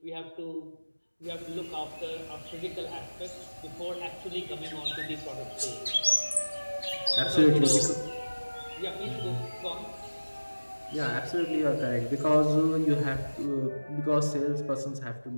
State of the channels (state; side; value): inverted; both; correlation -1.00